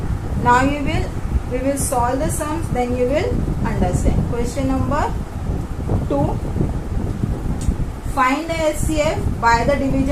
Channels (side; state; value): both; identical; correlation 1.00